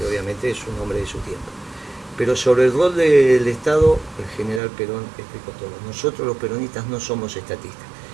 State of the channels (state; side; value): drops out; left; at 4.6 s